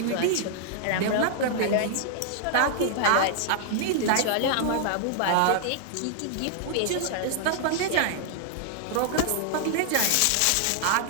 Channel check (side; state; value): both; different; correlation -0.01